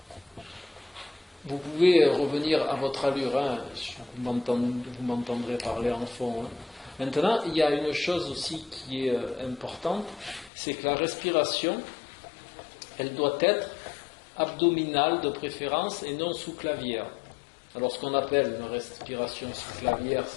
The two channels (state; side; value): drops out; right; at 10.5 s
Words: vous pouvez revenir à votre allure, hein. Vous m'entendrez parler en fond. Hein. Maintenant, il y a une chose aussi qui est importante, c'est que la respiration, elle doit être abdominale de préférence et non sous-clavière. Alors ce qu'on appelle une respiration sous-clavière,